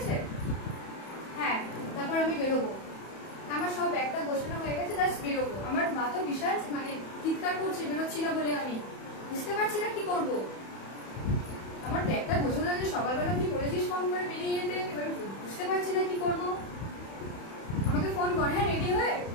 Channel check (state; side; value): late; right; 31 ms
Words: হ্যাঁ, তারপর আমি বেরোবো। আমার সব ব্যাগটা গোছানো হয়ে গেছে, জাস্ট বেরোবো। আমার মা তো বিশাল মানে চিৎকার করছে বেরোচ্ছি না বলে, আমি বুঝতে পারছি না কি করবো। আমার ব্যাগটা গোছানো হয়েছে, সকালবেলা তুই বলেছিস ফোন করে বেরিয়ে যেতে, এবার বুঝতে পারছি না কি করবো। আমাকে ফোন কর, হ্যাঁ রেডি হয়ে।